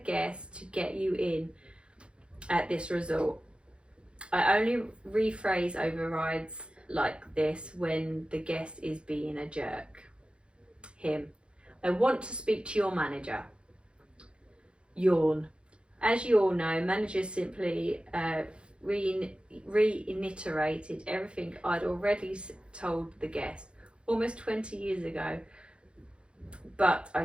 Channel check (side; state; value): left; late; 0.056 ms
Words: guest to get you in at this resort. I only rephrase overrides like this when the guest is being a jerk. Him. I want to speak to your manager. Yawn. As you all know, managers simply reiterated everything I'd already told the guest almost 20 years ago, but I